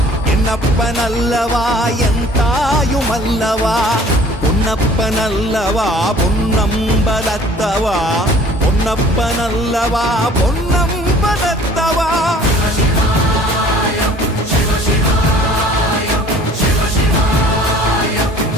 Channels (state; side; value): normal; both; correlation 0.51